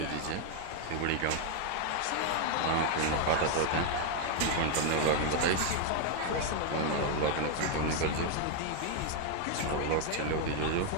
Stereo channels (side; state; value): both; different; correlation 0.00